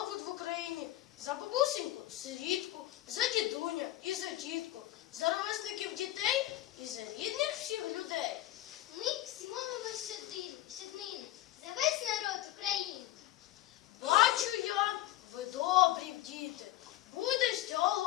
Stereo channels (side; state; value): right; quieter; 15.5 dB